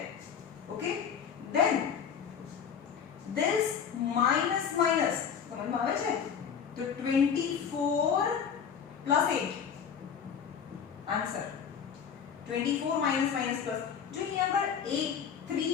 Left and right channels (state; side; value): quieter; right; 7.4 dB